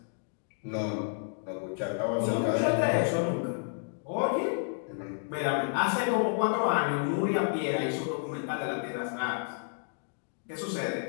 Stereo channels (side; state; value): right; silent; digital silence